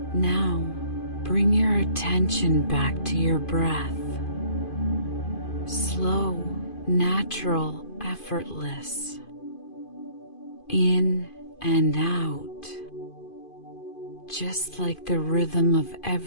Now, bring your attention back to your breath. Slow, natural, effortless. In and out. Just like the rhythm of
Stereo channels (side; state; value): right; late; 2.5 ms